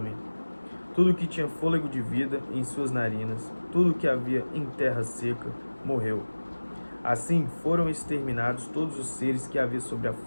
Tudo que tinha fôlego de vida em suas narinas, tudo que havia em terra seca, morreu. Assim foram exterminados todos os seres que havia sobre a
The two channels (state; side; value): inverted; both; correlation -1.00